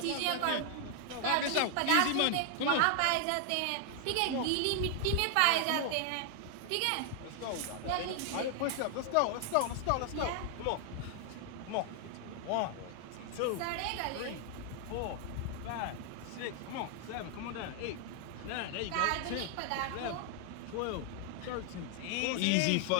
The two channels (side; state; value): both; different; correlation 0.00